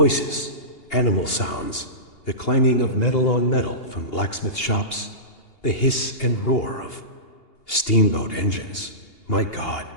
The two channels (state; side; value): late; right; 2.8 ms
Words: animal sounds, the clanging of metal on metal from blacksmith shops, the hiss and roar of steamboat engines. My God,